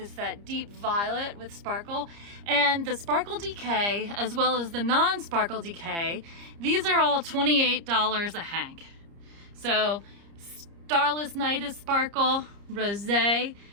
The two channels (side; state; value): left; late; 30 ms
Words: that deep violet with sparkle, and the Sparkle DK as well as the non-Sparkle DK. These are all $28 a hank. So Starless Night is sparkle, Rosé,